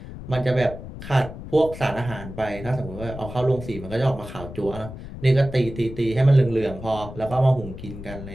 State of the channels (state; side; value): noise; left; rumble, 12 dB below the sound